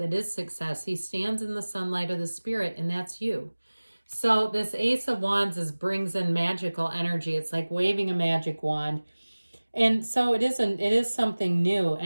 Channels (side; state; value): both; inverted; correlation -1.00